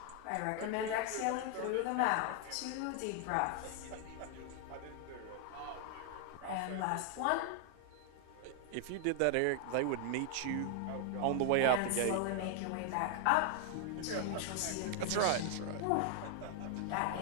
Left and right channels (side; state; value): both; different; correlation 0.00